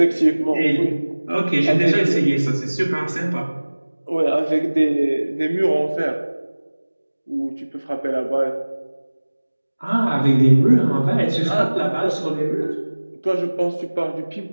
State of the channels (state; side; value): inverted; both; correlation -1.00